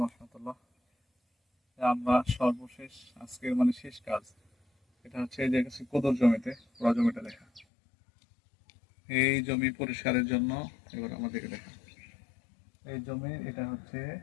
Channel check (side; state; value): right; drops out; at 7.7 s